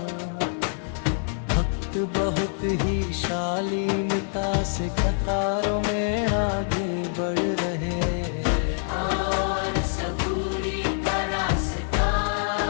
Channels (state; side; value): silent; right; digital silence